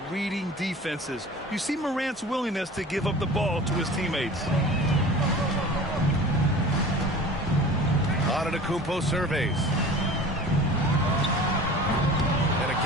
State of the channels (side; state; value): both; normal; correlation 0.40